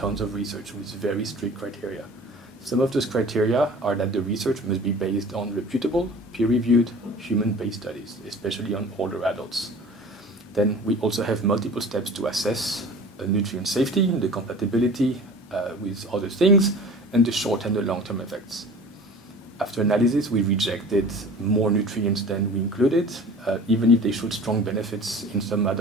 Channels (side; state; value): both; normal; correlation 0.41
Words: of research with very strict criteria. Some of those criteria are that the research must be based on reputable, peer-reviewed, human-based studies, especially on older adults. Then we also have multiple steps to assess nutrient safety, the compatibility with other things, and the short and the long-term effects. After analysis, we rejected more nutrients than we included, even if they showed strong benefits in some